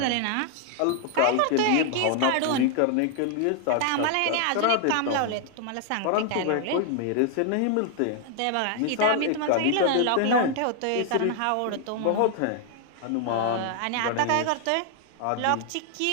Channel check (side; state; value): both; different; correlation 0.00